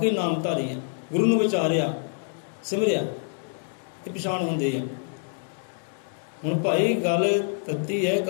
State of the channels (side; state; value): right; silent; 57 dB below the other